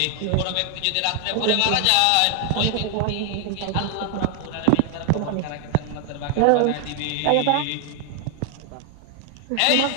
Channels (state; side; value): different; both; correlation 0.00